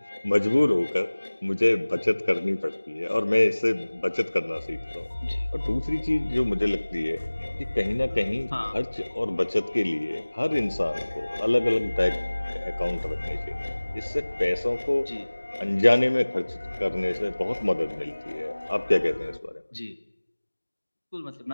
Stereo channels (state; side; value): inverted; both; correlation -1.00